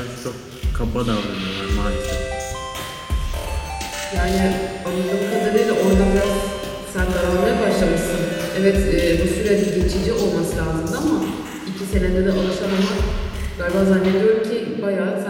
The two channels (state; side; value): identical; both; correlation 1.00